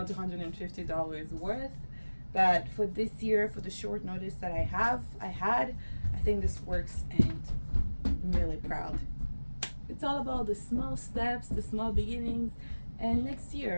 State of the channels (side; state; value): both; inverted; correlation -1.00